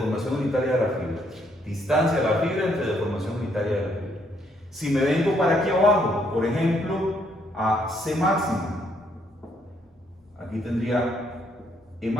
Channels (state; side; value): normal; both; correlation 0.71